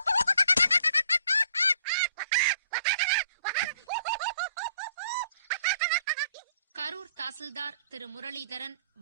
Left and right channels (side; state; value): both; inverted; correlation -0.60